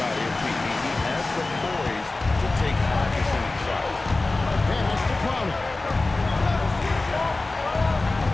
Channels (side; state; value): right; quieter; 3.2 dB